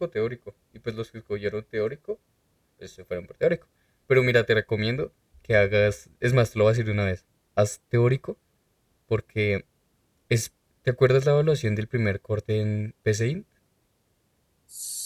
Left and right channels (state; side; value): identical; both; correlation 1.00